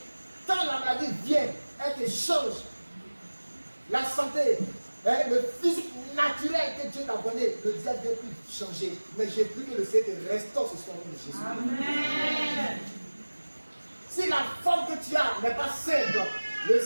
Quand la maladie vient, elle te change. La santé, le physique naturel que Dieu t'a donné, le diable ne vient plus changer. Mais j'ai pris que le Seigneur restaure ce soir au nom de Jésus. Amen. Si la forme que tu as n'est pas simple, le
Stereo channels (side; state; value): both; inverted; correlation -1.00